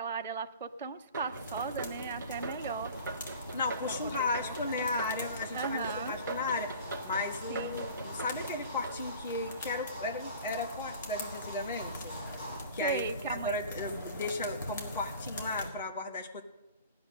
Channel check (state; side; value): inverted; both; correlation -0.42